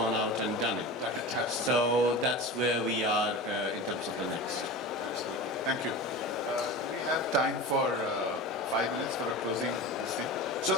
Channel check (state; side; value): normal; both; correlation 0.30